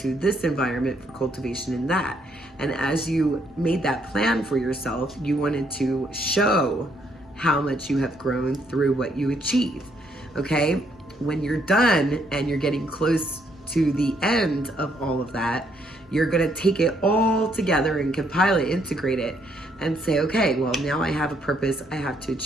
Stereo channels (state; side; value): normal; both; correlation 0.71